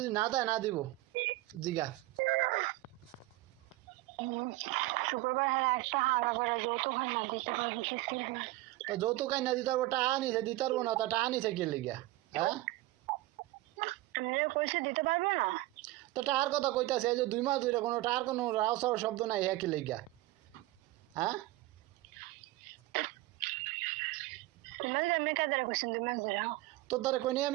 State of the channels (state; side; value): quieter; left; 18.5 dB